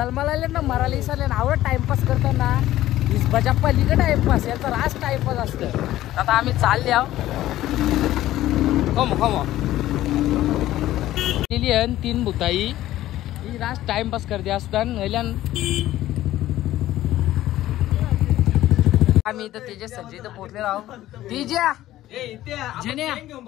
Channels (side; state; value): right; quieter; 14.5 dB